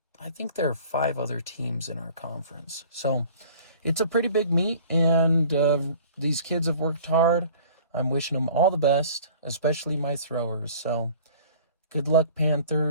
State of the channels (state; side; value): inverted; both; correlation -0.48